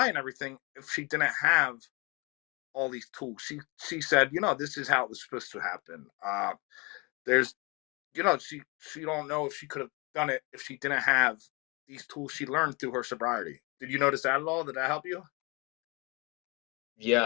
and everything if she didn't have all these tools. She said, this is how it was supposed to happen. There's, she don't know if she could have done it if she didn't have these tools she learned through her sobriety. Did you notice that at all? Did that help you?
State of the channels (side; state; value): right; quieter; 28.6 dB